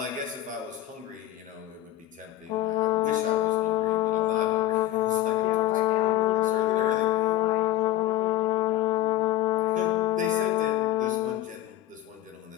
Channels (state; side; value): quieter; right; 14.2 dB